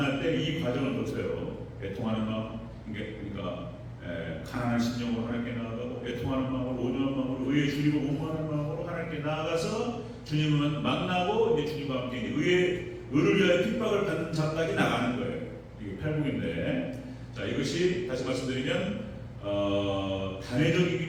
때 이 과정을 거쳐요. 애통하는 마음, 그러니까 가난한 심령으로 하나님께 나아가고 애통하는 마음으로 온유한 마음으로 의에 줄이고 공부하는 마음으로 하나님께 나아가서 주님을 만나고 이제 주님과 함께 의를 위하여 핍박을 받는 자까지 나가는 거예요. 이게 팔복인데, 자 이것이 다시 말씀드리면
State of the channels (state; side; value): identical; both; correlation 1.00